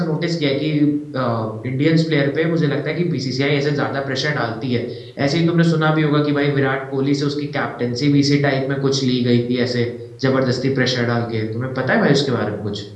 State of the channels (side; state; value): both; identical; correlation 1.00